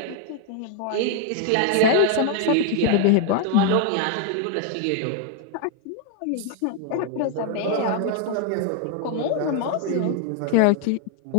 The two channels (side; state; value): both; different; correlation 0.01